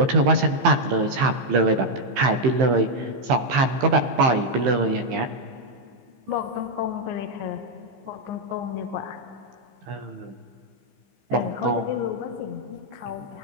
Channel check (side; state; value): left; late; 15 ms